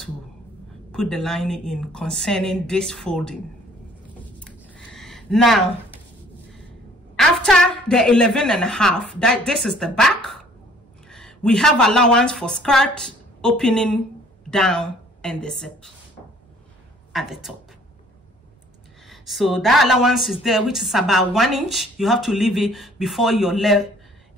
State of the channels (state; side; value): normal; both; correlation 0.57